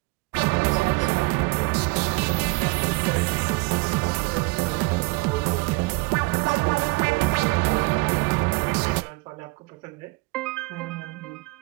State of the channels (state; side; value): quieter; left; 24.3 dB